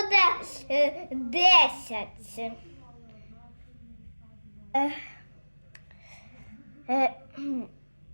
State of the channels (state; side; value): inverted; both; correlation -1.00